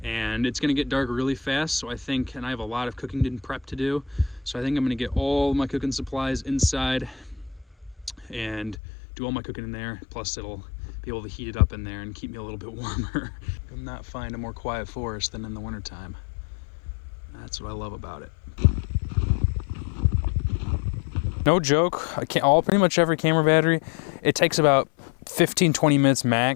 and it's gonna get dark really fast, so I think, and I have a lot of cooking and prep to do, so I think I'm gonna get all my cooking supplies inside and do all my cooking in there, plus it'll be able to heat it up in there and keep me a little bit warmer. I'm not find a more quiet forest than in the wintertime. That's what I love about it. No joke, pretty much every camera battery, it takes about 15-20 minutes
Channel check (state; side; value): drops out; right; at 8.8 s